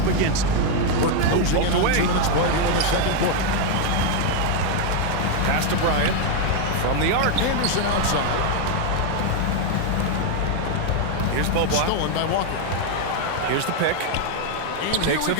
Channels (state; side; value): different; both; correlation 0.01